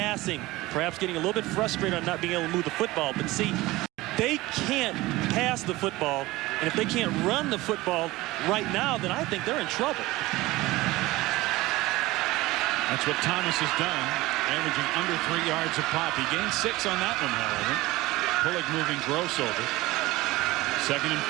perhaps getting a little bit frustrated on not being able to move the football. But see, they can't pass the football, and if they can't run the football right now, then I think they're in trouble. That's what Thomas has done, averaging under 3 yards a pop. He gained 6 on that one, however. Pullig moving Gross over. 2nd and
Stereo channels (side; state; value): left; quieter; 19.3 dB